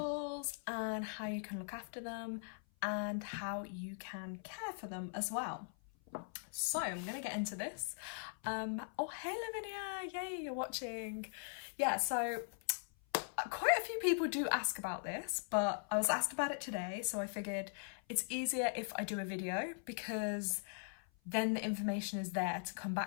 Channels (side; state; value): right; silent; 51 dB below the other